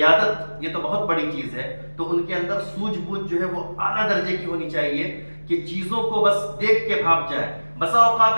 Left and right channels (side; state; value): both; inverted; correlation -1.00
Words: یہ تو بہت بڑی چیز ہے، تو ان کے اندر سوجھ بوجھ جو ہے وہ اعلیٰ درجے کی ہونی چاہیے کہ چیزوں کو بس دیکھ کے بھاپ جائیں۔ بسا